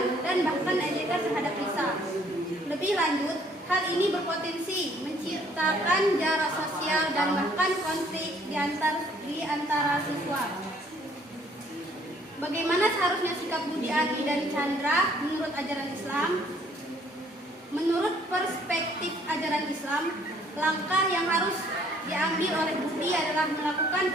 dan bahkan ejekan terhadap Risa. Lebih lanjut, hal ini berpotensi menciptakan jarak sosial dan bahkan konflik di antara siswa. Bagaimana seharusnya sikap Budi, Ani, dan Chandra menurut ajaran Islam? Menurut perspektif ajaran Islam, langkah yang harus diambil oleh Budi adalah melakukan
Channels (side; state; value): both; normal; correlation 0.61